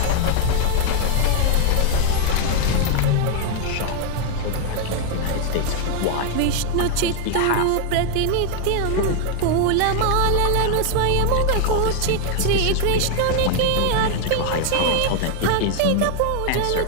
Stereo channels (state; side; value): different; both; correlation 0.00